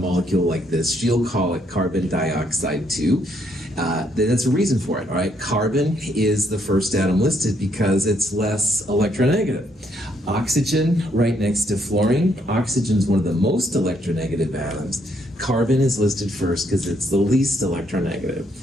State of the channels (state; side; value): normal; both; correlation 0.72